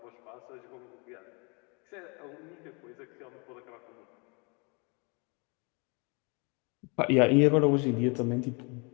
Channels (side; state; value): right; quieter; 32.0 dB